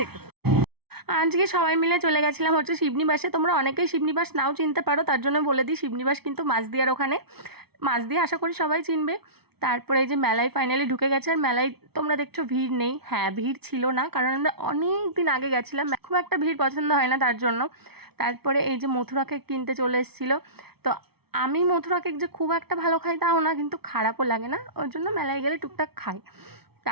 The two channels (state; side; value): late; left; 0.97 ms